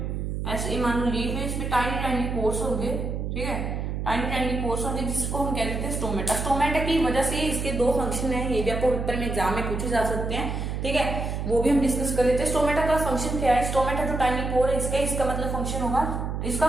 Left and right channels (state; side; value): noise; right; hum, 3 dB below the sound